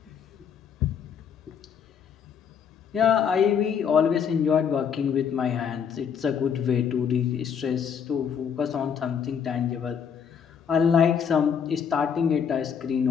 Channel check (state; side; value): quieter; right; 7.3 dB